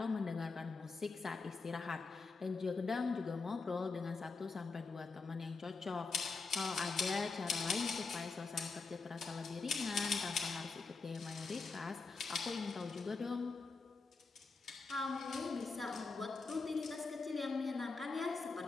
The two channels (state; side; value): quieter; right; 4.2 dB